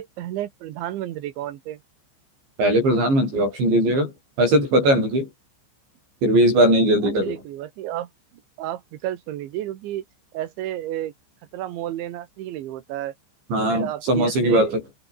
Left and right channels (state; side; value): late; left; 15 ms